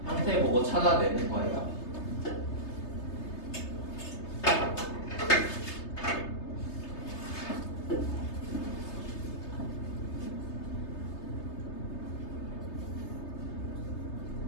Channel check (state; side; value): late; right; 3.3 ms